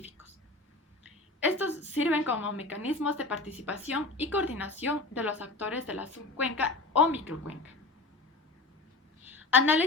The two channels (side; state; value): right; quieter; 3.2 dB